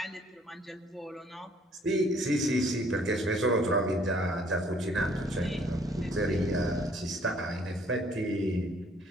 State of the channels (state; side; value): normal; both; correlation 0.61